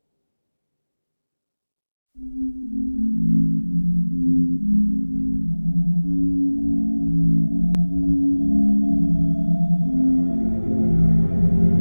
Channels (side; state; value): both; inverted; correlation -1.00